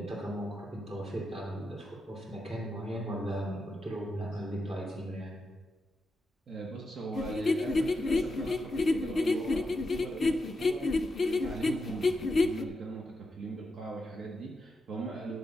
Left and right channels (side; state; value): both; normal; correlation 0.86